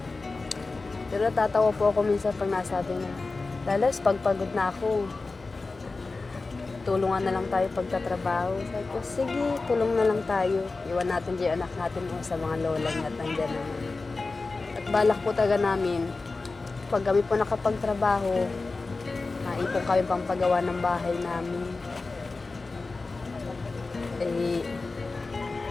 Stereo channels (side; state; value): right; quieter; 3.7 dB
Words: Pero tatawa po ako minsan pag nasabi na, Lalabs, pagpagod na ako, tulungan na lang tayo pagtatrabaho. Sabi ko, sige, tulong na lang tayo. Iwan natin dyan anak natin sa mga lola niya at nandyan naman. At balak po talaga namin, pag kami po nakapagtrabaho, naipon kami pampagawa ng bahay namin. Eh,